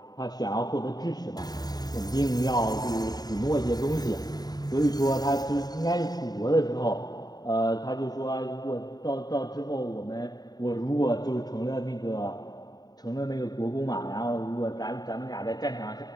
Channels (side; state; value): right; late; 0.19 ms